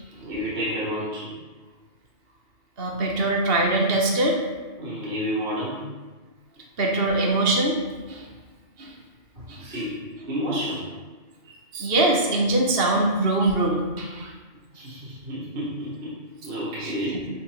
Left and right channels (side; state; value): left; late; 2.7 ms